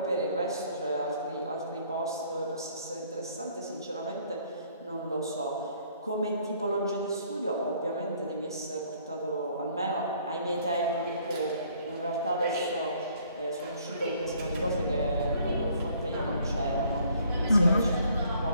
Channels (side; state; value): both; inverted; correlation -0.62